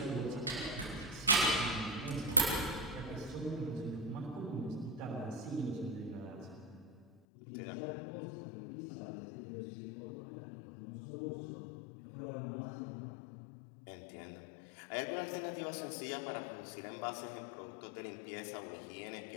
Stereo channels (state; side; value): drops out; right; at 7.1 s